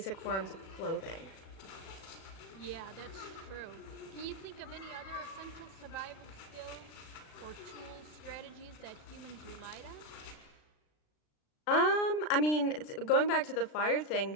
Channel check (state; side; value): late; right; 36 ms